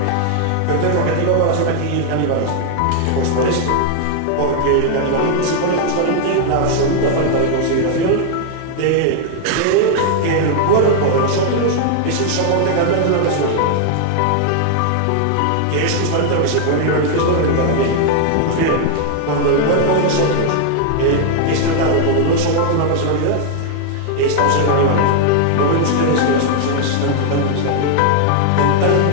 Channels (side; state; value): both; different; correlation 0.00